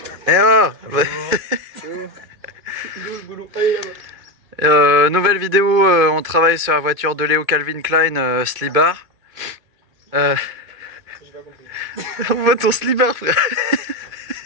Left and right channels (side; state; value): left; late; 2.5 ms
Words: Eh oh. Nouvelle vidéo, on travaille sur la voiture de Léo Calvin Klein, Slibar. On voit ton Slibar, frère.